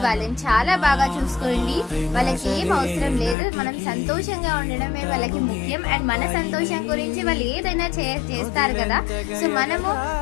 వాళ్ళని చాలా బాగా చూసుకోండి. వాళ్ళకి ఏం అవసరం లేదు, మనం సంతోషంగా ఉండడమే వాళ్ళకి ముఖ్యం. అండ్ మన సంతోషం గురించి వాళ్ళు ఏదైనా చేస్తారు కదా, సో మనము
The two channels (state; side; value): drops out; right; at 3.4 s